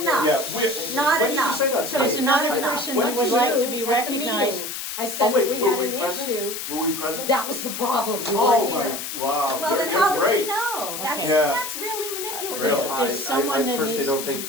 enough. Not when did you enough. say that? So there's Stacey? another enough. person What who did would you like say? to be At the recognized. meeting. I Oh, said wait, that we were had we an present? issue. Were we present? That was the problem, you Oh weren't my, here. wow. Well, then you're how did great. you know? That's, Okay. Yeah. that's really manipulative. Really? There's someone that I personally needs don't to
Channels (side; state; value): left; noise; hiss, 6 dB below the sound